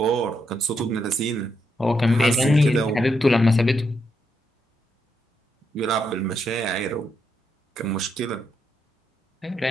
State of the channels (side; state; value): both; normal; correlation 0.79